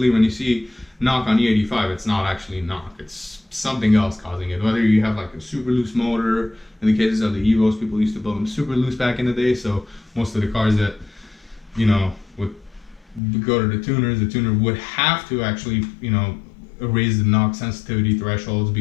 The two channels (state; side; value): drops out; right; at 13.2 s